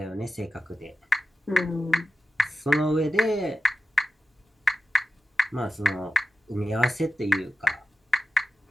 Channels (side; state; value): both; normal; correlation 0.92